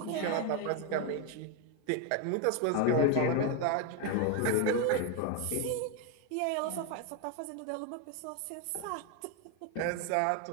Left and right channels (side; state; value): both; different; correlation 0.01